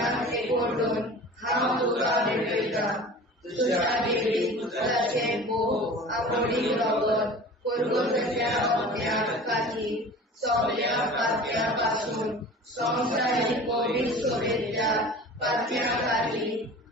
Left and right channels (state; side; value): normal; both; correlation 0.40